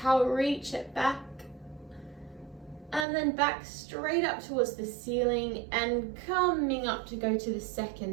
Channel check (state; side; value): drops out; left; at 3.1 s